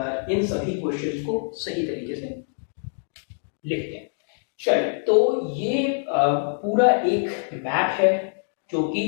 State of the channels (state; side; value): silent; right; digital silence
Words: इन सभी क्वेश्चंस को सही तरीके से लिखते हैं। चलिए, तो ये पूरा एक मैप है जो कि